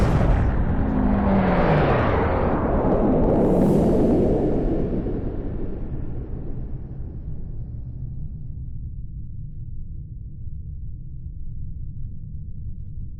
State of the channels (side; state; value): both; identical; correlation 1.00